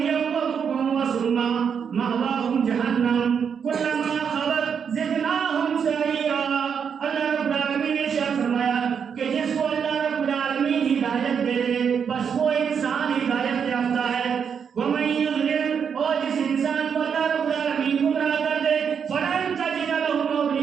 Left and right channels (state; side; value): quieter; left; 7.0 dB